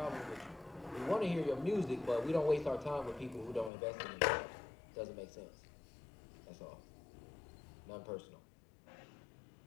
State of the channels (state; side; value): drops out; right; at 3.7 s